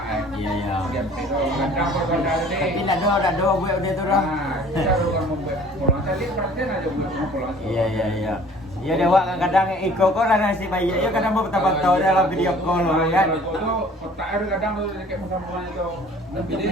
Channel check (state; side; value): normal; both; correlation 0.51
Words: Iya. Kadang pada tadi. Tapi dah do buat dia tu dah. Kita orang membuat polong tadi perhatian aja buat polong. Iya. Ya dewa kadang iko kok lah nasi bayi. Ya kadang mau tahu dalam video call kan. Itu kotak ada kadang tu dekat muka itu. Tapi